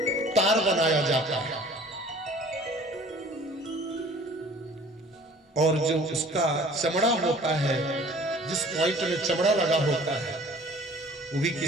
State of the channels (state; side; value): normal; both; correlation 0.50